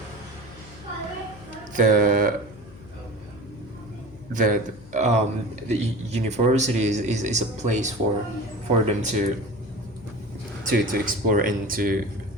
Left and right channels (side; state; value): left; noise; hum, 20 dB below the sound